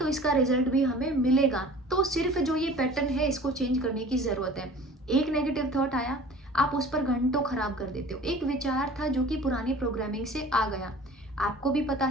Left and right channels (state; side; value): normal; both; correlation 0.44